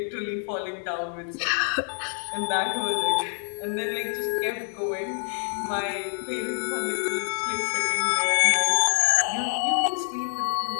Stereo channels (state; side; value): silent; right; 61 dB below the other